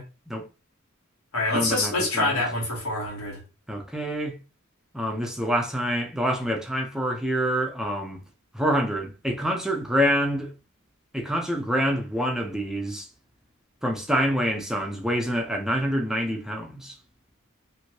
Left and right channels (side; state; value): both; normal; correlation 0.59